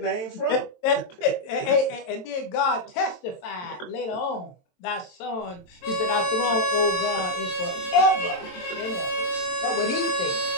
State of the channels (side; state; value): right; late; 22 ms